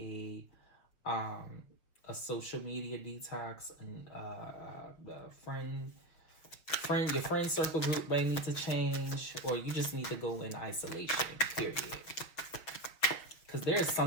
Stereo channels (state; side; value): late; right; 6.1 ms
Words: um a social media detox, and your friend circle group may need to change, or you just need to go in isolation, period. Because there's